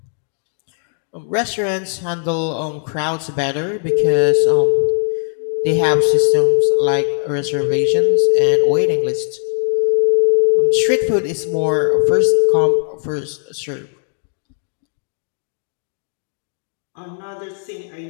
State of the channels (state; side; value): silent; right; 67 dB below the other